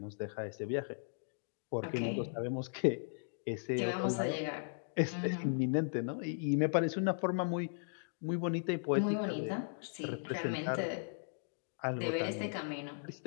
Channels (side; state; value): right; silent; digital silence